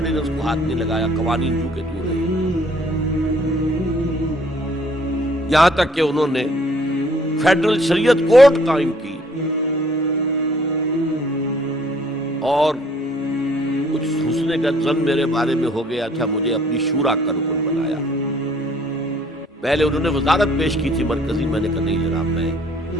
کو ہاتھ نہیں لگایا، قوانین جو کہ تو رہے، یہاں تک کہ انہوں نے فیڈرل شریعت کورٹ قائم کی، اور کچھ حسن کا ظن میرے بارے میں ہو گیا تھا، مجھے اپنی شورا کا رکن بنایا۔ پہلے انہوں نے وزارت پیش کی تھی مرکزی، میں نے کہا نہیں جناب، میں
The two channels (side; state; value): both; normal; correlation 0.60